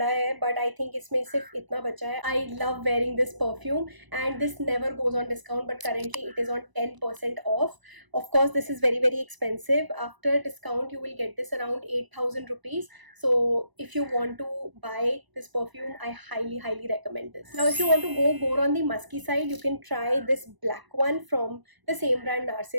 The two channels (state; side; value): late; left; 1.0 ms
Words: है, but I think इसमें सिर्फ इतना बचा है. I love wearing this perfume and this never goes on discount, but currently it is on 10% off. Of course, this is very expensive. After discount, you will get this around 8000 rupees. So if you want to buy this perfume, I highly recommend this. Now, if you want to go more on the musky side, you can try this black one from the same brand